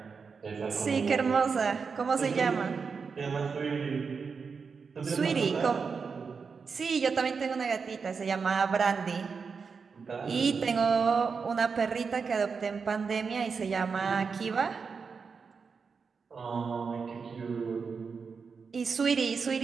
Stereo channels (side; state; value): left; quieter; 5.4 dB